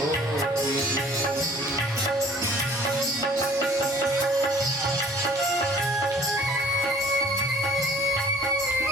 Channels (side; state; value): both; normal; correlation 0.53